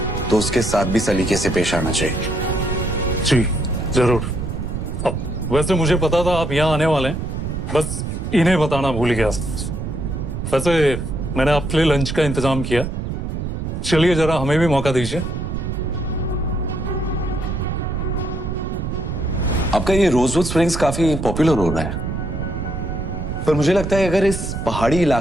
तो उसके साथ भी सलीके से पेश आना चाहिए। जी जरूर। अब वैसे मुझे पता था आप यहाँ आने वाले हैं, बस इन्हें बताना भूल गया। वैसे मैंने आपके लिए लंच का इंतजाम किया, चलिए जरा हमें भी मौका दीजिए। आपका ये रोजवुड स्प्रिंग्स काफी पॉपुलर हो रहा है, पर मुझे लगता है अगर इस पहाड़ी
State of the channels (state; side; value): noise; right; rumble, 4 dB below the sound